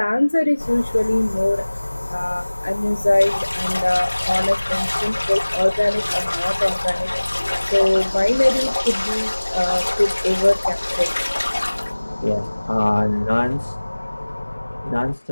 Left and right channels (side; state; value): both; inverted; correlation -1.00